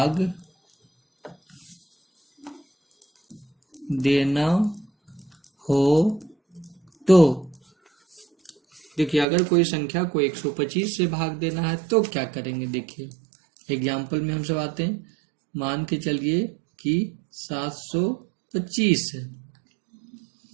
देना हो तो देखिए, अगर कोई संख्या को 125 से भाग देना है तो क्या करेंगे। देखिए एग्जाम्पल में हम सब आते हैं। मान के चलिए कि 725 है,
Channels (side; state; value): left; drops out; at 9.2 s